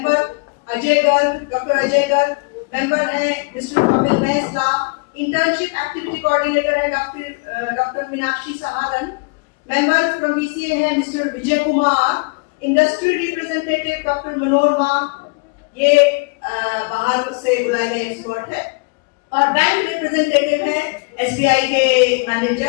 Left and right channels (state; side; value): quieter; right; 30.9 dB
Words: Ajay Garg, doctor Ajay Garg. Member है mister Kapil Mehsala. Internship activity coordinator है doctor Meenakshi Saharan. Member from BCA है mister Vijay Kumar. Industry representative doctor Manorama, ये बाहर से बुलाए गए एक्सपर्ट है। और बैंक रिप्रेजेंटेटिव है एसबीआई के